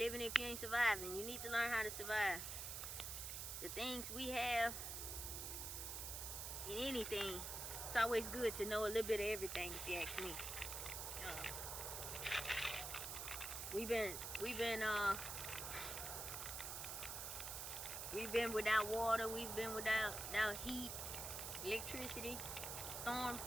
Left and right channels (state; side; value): noise; right; hiss, 4 dB below the sound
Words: if you ain't surviving. You need to learn how to survive. The things we have in anything, it's always good to know a little bit of everything, if you ask me. We've been without water, we've been without heat, electricity, storms